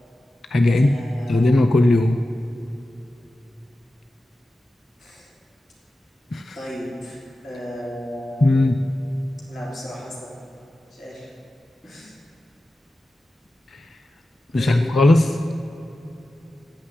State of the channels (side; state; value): both; normal; correlation 0.93